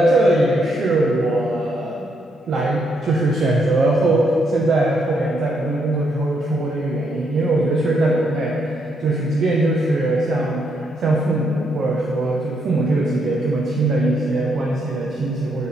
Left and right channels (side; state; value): both; normal; correlation 0.76